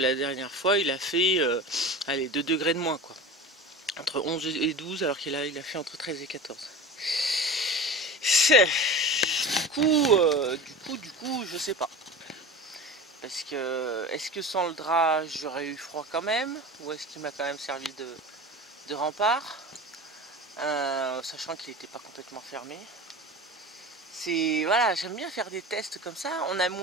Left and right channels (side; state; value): both; normal; correlation 0.32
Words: dernière fois, il a fait, allez, 2 degrés de moins, quoi. Entre 11 et 12, alors qu'il a fait entre 13 et 14. Du coup, je sais pas. Parce que, est-ce que sans le drap, j'aurais eu froid quand même? Ou est-ce qu'il m'a quand même servi de rempart? Sachant qu'il n'était pas complètement fermé. Voilà, j'aime bien faire des tests comme ça. On a